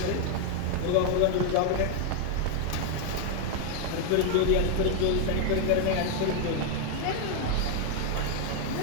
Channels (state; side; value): different; both; correlation 0.00